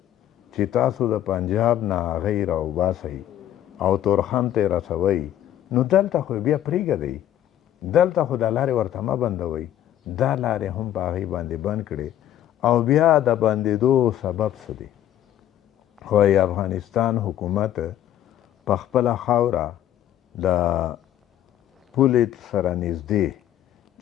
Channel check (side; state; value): right; quieter; 11.8 dB